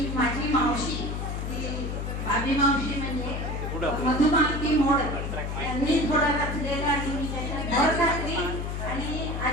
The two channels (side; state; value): left; noise; hum, 3 dB below the sound